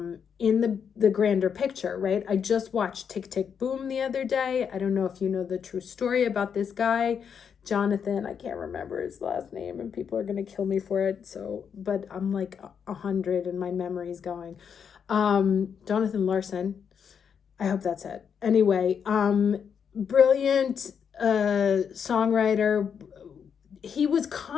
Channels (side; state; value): right; quieter; 7.2 dB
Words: grander picture, right? I just watched Tick, Tick, Boom the other day. I don't know if you know the true story about this guy, Jonathan. I can't remember his last name and people are going to kill me for it. So, but I'm like 100 and my memory's going. Jonathan Larson. I hope that's it. Anyway, brilliant songwriter. He was